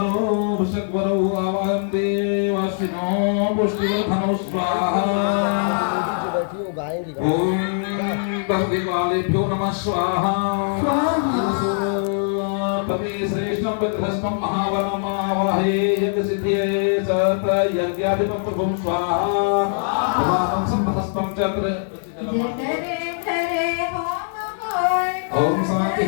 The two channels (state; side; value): silent; right; 57 dB below the other